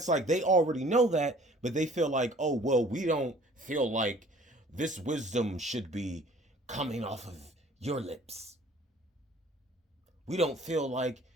like they already know that, but they feel like, oh, well, we don't feel like this wisdom should be coming off of your lips. We don't feel like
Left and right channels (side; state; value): both; normal; correlation 0.53